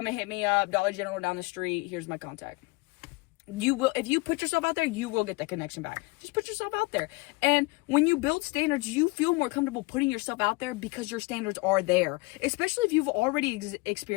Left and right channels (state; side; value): quieter; right; 24.8 dB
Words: and hit me up, Dollar General down the street, here's my contact. You will, if you put yourself out there, you will get the connection back. Just put yourself out there. And when you build standards, you feel more comfortable putting yourself out there, because your standards are there. Especially if you've already